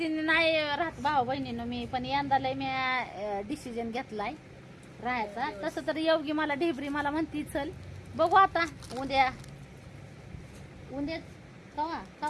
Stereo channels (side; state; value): both; identical; correlation 1.00